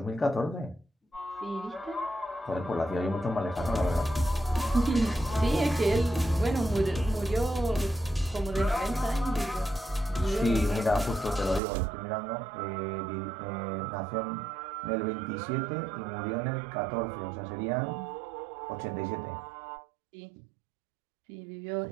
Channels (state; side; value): drops out; left; at 11.6 s